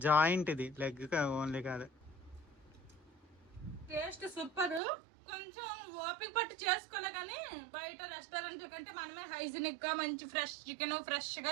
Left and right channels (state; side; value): drops out; left; at 4.8 s